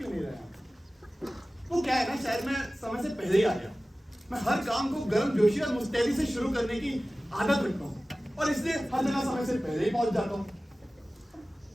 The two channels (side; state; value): both; normal; correlation 0.97